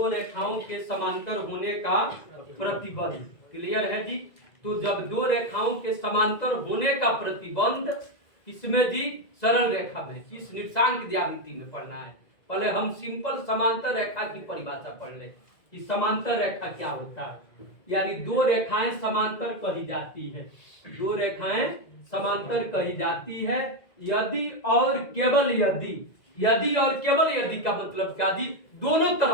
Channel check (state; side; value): late; right; 2.0 ms